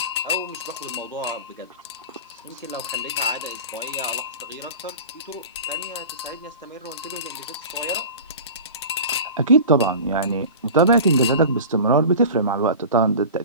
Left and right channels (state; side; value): inverted; both; correlation -0.35